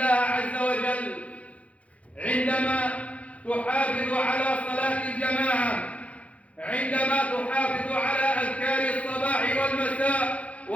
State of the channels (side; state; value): right; late; 0.065 ms